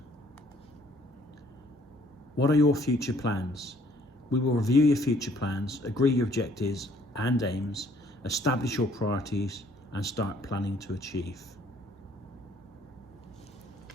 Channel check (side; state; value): both; normal; correlation 0.61